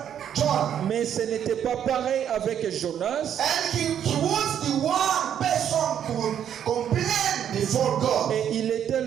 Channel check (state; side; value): quieter; left; 9.4 dB